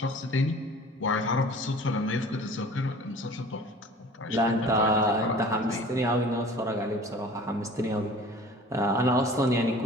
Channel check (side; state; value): both; normal; correlation 0.45